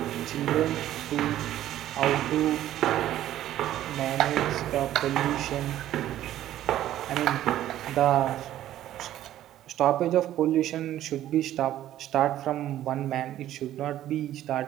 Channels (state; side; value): quieter; left; 12.8 dB